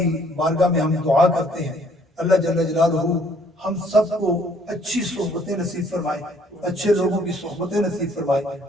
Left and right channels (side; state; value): both; normal; correlation 0.62